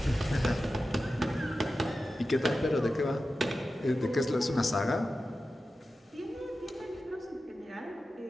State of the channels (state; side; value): normal; both; correlation 0.93